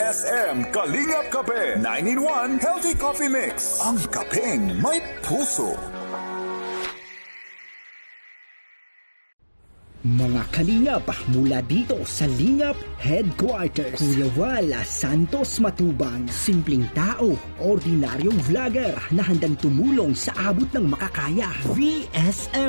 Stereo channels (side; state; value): both; inverted; correlation -1.00